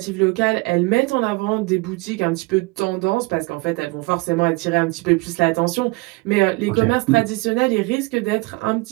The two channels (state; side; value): quieter; left; 24.6 dB